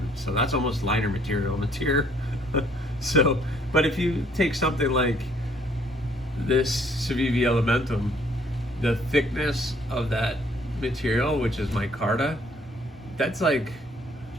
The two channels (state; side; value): normal; both; correlation 0.62